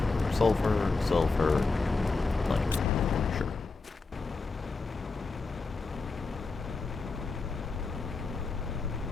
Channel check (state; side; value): quieter; right; 4.0 dB